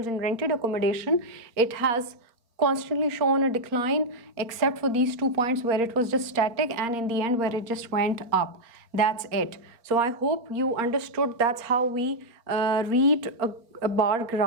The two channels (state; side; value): late; left; 4.3 ms